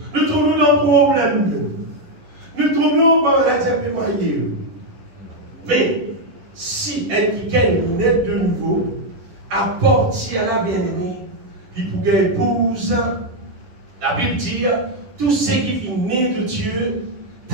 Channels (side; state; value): left; late; 11 ms